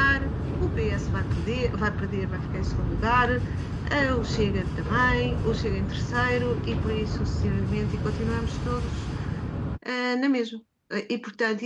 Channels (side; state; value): both; identical; correlation 1.00